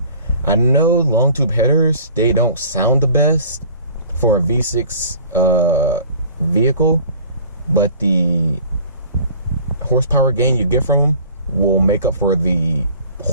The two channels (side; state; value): both; inverted; correlation -0.47